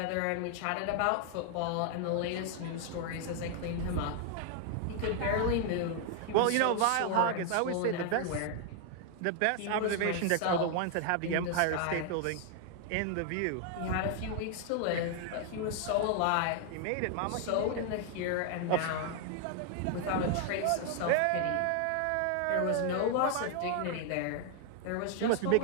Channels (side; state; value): both; different; correlation 0.00